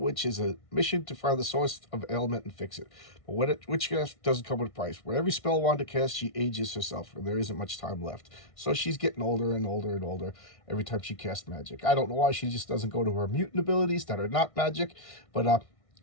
is a mission to find the source of ailment and fix it. But witchcraft doesn't come with a price. With every spell Wanda casts, she ages herself, and there isn't much time left. So she's getting older and older and older every time she casts magic. I don't know why she just doesn't go to her mutant abilities that are not magic, but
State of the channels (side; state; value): right; late; 1.6 ms